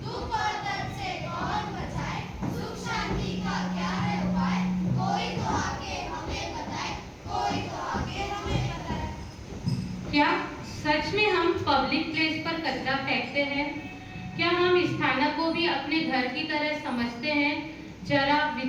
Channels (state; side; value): identical; both; correlation 1.00